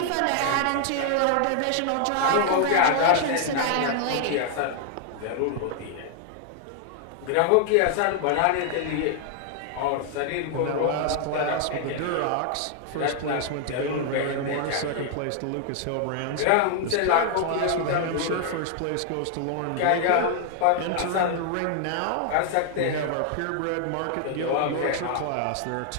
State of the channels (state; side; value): different; both; correlation 0.00